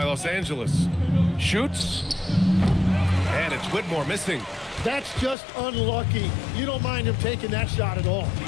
Los Angeles. Shoots. And it's Whitmore missing. That's just unlucky. You don't mind him taking that shot at all.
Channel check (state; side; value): drops out; right; at 5.4 s